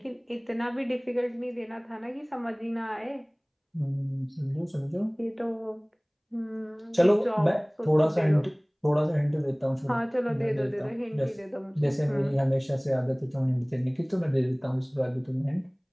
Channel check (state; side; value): identical; both; correlation 1.00